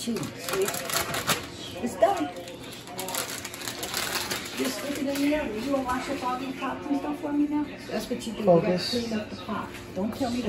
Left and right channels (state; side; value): identical; both; correlation 1.00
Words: See? It's done. Just stick it in the oven. You want to wash up all these pots and stuff for me now? That's what you do. Focus. You got to clean up the pot. Don't tell me